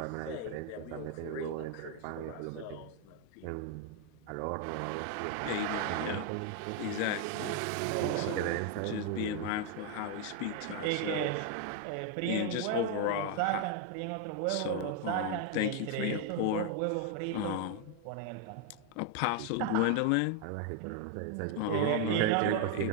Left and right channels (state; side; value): different; both; correlation 0.01